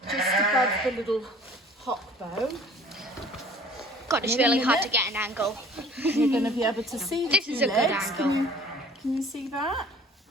just above the little hock bone. God, it's really hard to get an angle. You're going to be able to see the 2 legs. This is a good angle. Can you see that?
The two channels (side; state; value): both; normal; correlation 0.50